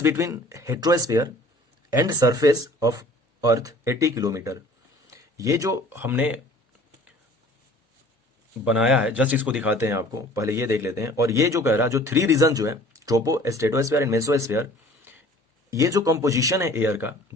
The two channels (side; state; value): both; normal; correlation 0.49